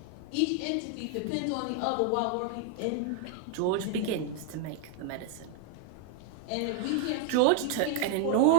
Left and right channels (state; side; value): different; both; correlation 0.00